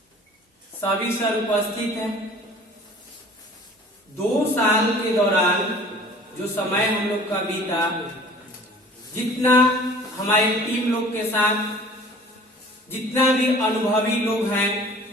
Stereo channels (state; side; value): normal; both; correlation 0.47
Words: सभी सर उपस्थित हैं। 2 साल के दौरान जो समय हम लोग का बीता, जितना हमारे टीम लोग के साथ जितना भी अनुभवी लोग हैं,